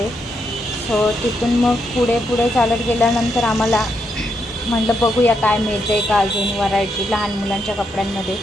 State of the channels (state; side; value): normal; both; correlation 0.80